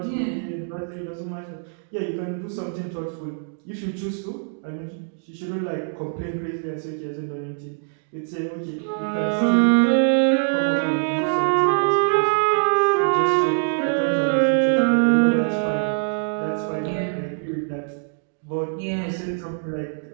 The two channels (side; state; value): left; silent; digital silence